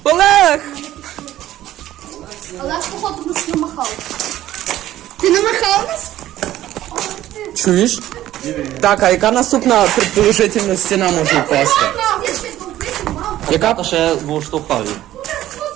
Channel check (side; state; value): left; quieter; 13.7 dB